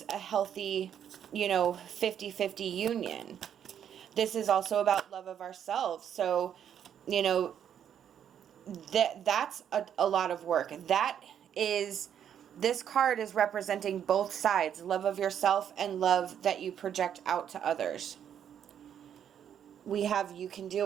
a healthy, 50-50 union. This is also about love of ourselves. So, that's a lot of work. This card is representing both sides, love of yourself and love that you project out to others. We have you can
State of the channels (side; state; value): left; quieter; 9.1 dB